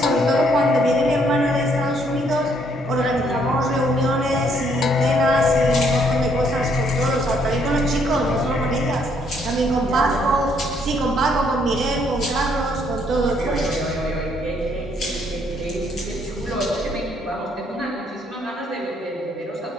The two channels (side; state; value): both; normal; correlation 0.69